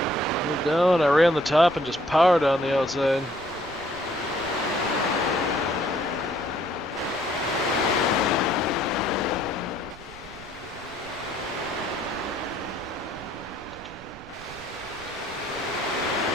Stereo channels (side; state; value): right; noise; rumble, 18 dB below the sound